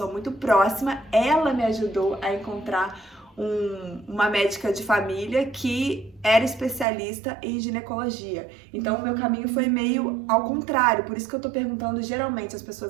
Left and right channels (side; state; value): left; drops out; at 6.9 s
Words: muito próxima. Ela me ajudou a encontrar uma médica de família que era especialista em ginecologia. Então o meu caminho foi meio ao contrário. Por isso que eu tô perguntando, geralmente as